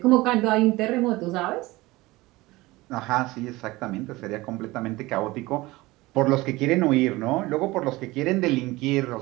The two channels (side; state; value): left; quieter; 20.3 dB